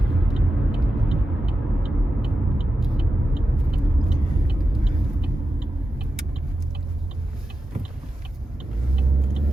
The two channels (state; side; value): normal; both; correlation 0.90